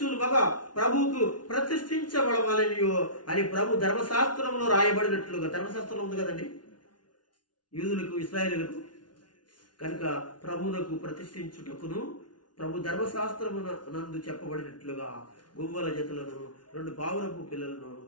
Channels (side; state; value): right; late; 0.70 ms